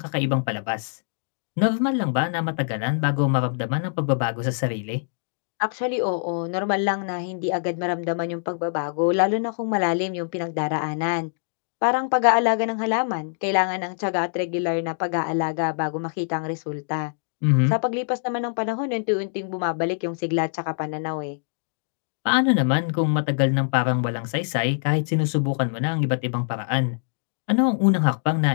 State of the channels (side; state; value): right; silent; digital silence